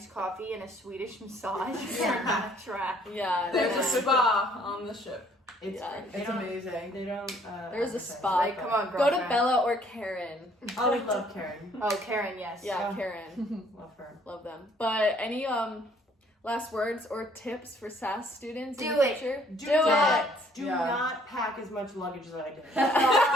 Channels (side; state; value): both; normal; correlation 0.61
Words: coffee and a Swedish massage, you're not trapped." Yeah, There's no. a spa on the ship. It's Yeah. It's amazing. They don't. There's a advertise spa. like Come that. on, Go girlfriend. to Bella or Karen. Oh, we love Karen. Oh, Karen, yes. Yeah, Karen. Love her. Love them. But any last words or tips for SAS students in Do the it. future? Do not Yeah. not pack as much luggage as I did.